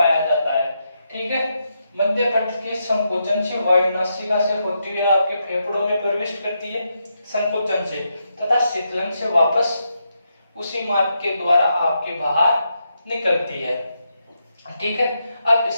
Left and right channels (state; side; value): inverted; both; correlation -0.83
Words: जाता है। ठीक है, मध्य पट के संकोचन से वायु नासिका से होती हुई आपके फेफड़ों में प्रवेश करती है संकोचन से, तथा शीतलन से वापस उसी मार्ग के द्वारा आपके बाहर निकलती है। ठीक है, अब